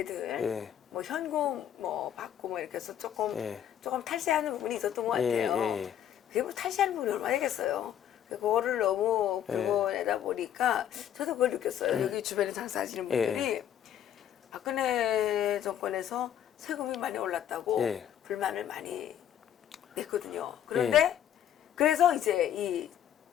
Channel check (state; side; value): quieter; right; 10.2 dB